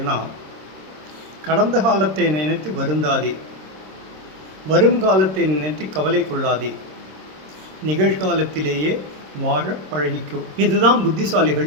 கடந்த காலத்தை நினைத்து வருந்தாதே, வரும் காலத்தை நினைத்து கவலை கொள்ளாதே, நிகழ்காலத்திலேயே வாழ பழகிக்கும். இதுதான்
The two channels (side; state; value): left; late; 26 ms